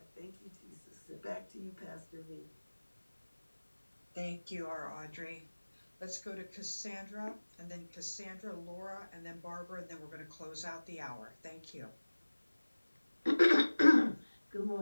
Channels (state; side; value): inverted; both; correlation -1.00